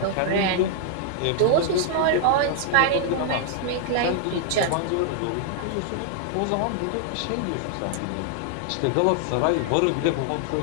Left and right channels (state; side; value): different; both; correlation 0.00